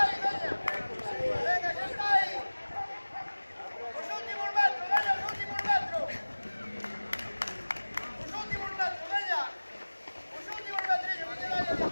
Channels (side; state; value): both; inverted; correlation -1.00